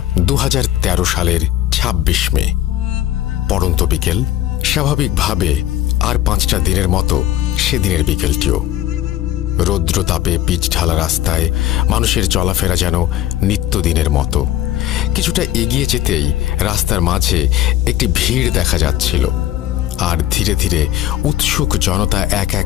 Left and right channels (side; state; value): right; quieter; 13.3 dB